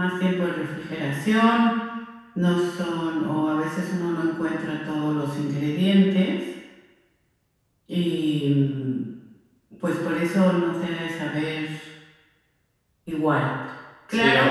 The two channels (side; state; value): both; identical; correlation 1.00